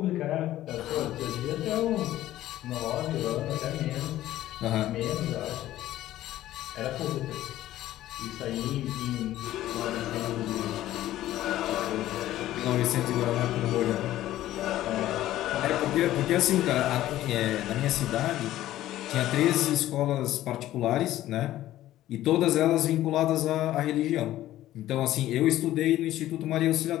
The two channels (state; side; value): quieter; right; 14.2 dB